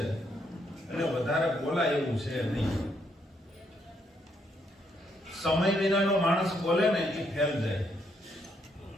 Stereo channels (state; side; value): normal; both; correlation 0.74